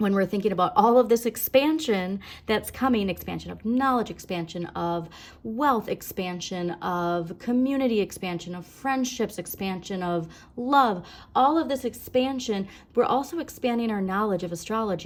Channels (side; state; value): both; identical; correlation 1.00